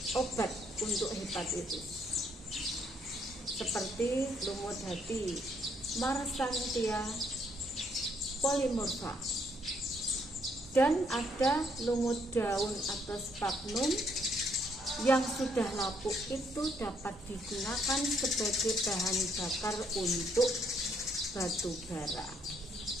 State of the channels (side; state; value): both; normal; correlation 0.70